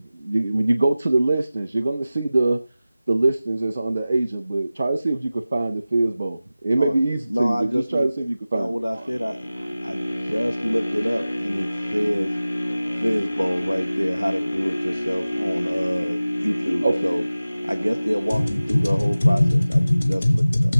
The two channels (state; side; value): inverted; both; correlation -0.96